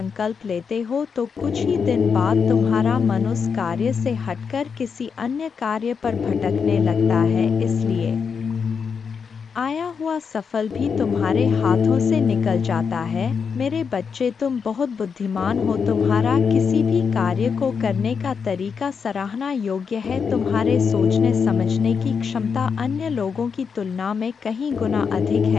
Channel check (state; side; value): quieter; right; 6.1 dB